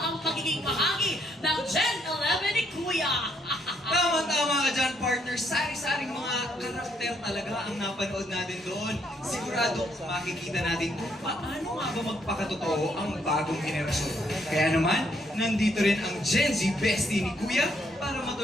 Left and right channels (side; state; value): both; normal; correlation 0.72